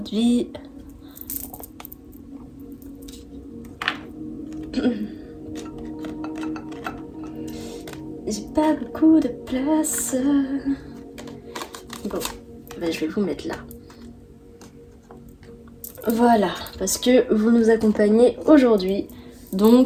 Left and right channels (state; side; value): identical; both; correlation 1.00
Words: de vie. J'ai pas beaucoup de place. Bon, ben je vais vous mettre là. Voilà, parce que vous nous accompagnez aujourd'hui.